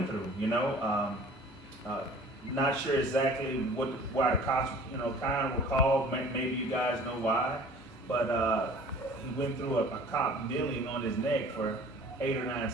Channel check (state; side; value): normal; both; correlation 0.47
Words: through. You know, not sure exactly why the cops kind of were called. Maybe you guys know why, but he went through a cop kneeling on his neck for 8 or 9